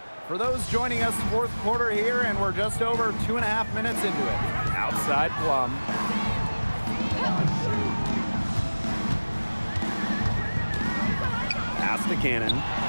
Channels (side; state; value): both; inverted; correlation -1.00